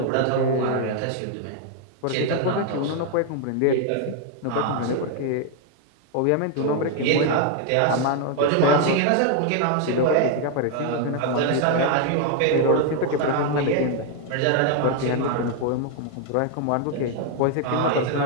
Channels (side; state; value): both; different; correlation 0.00